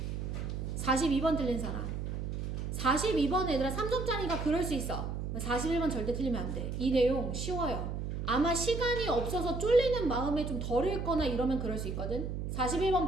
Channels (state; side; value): noise; right; hum, 4 dB below the sound